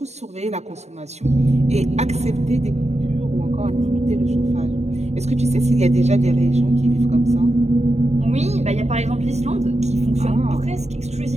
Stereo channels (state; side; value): late; left; 0.32 ms